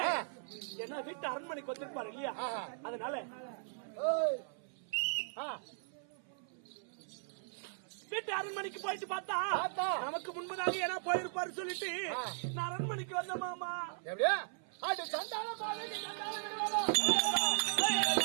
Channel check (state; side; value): silent; left; 53 dB below the other